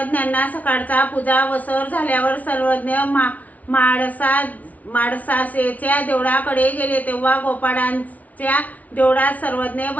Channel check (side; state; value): right; late; 0.072 ms